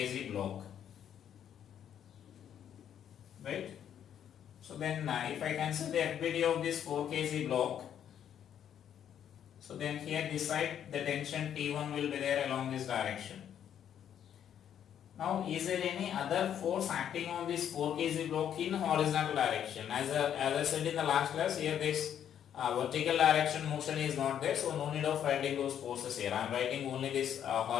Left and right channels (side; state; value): right; quieter; 9.5 dB